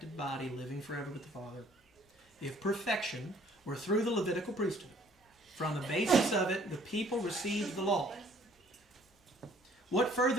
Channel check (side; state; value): both; normal; correlation 0.58